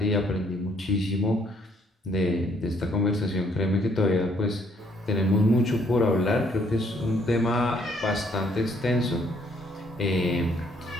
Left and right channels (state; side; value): normal; both; correlation 0.67